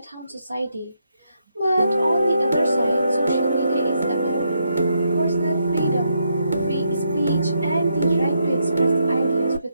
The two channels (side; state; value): both; inverted; correlation -0.79